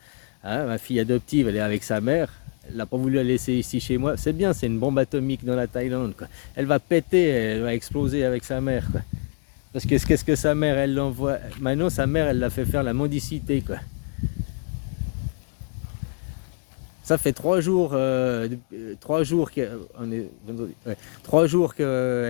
Hein, ma fille adoptive, elle est avec sa mère. Elle n'a pas voulu la laisser ici chez moi. C'est bien, c'est une bombe atomique dans la Thaïlande, quoi. Elle va péter, elle va exploser avec sa mère, quoi. Parce que qu'est-ce que sa mère, elle l'envoie. Maintenant, sa mère, elle l'a fait faire la mendicité, quoi. Ça fait 3 jours, 3 jours ouais, 3 jours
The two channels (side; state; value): right; quieter; 32.7 dB